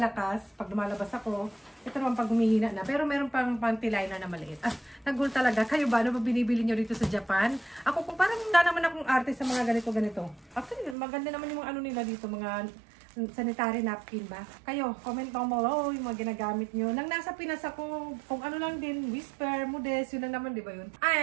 pag lumalabas ako, ito naman pag humihina na. Pero meron pang panty-liner na maliit. Ah, nagul talaga. Kayo ba? Ano ba binibili nyo dito sa Japan? Ako kung parang wala naman akong arte sa mga ganito-ganito. Actually, maganda naman yung mga ano nila dito, mga sanitary napkin ba? Kayo, comment mo mo, yung mga ginagamit nyo. Nang nasa Pinas ako, kung ano lang din, Whisper, Modest, yun lang naman, di ba yun?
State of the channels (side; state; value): left; drops out; at 11.0 s